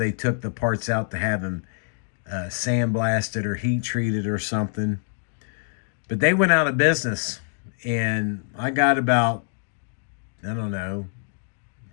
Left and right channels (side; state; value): right; silent; 62 dB below the other